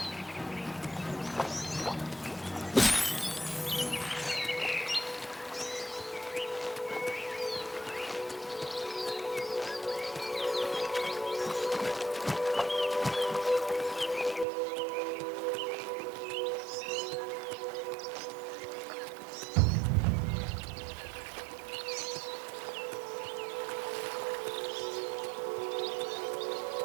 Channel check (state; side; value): drops out; left; at 14.5 s